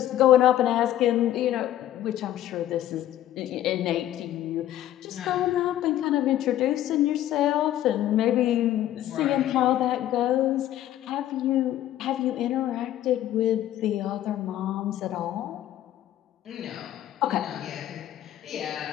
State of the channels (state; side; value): quieter; right; 12.7 dB